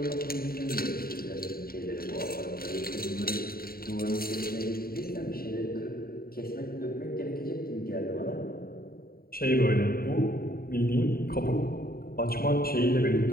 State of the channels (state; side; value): late; right; 0.43 ms